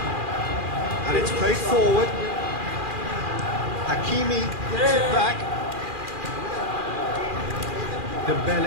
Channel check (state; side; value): late; left; 2.4 ms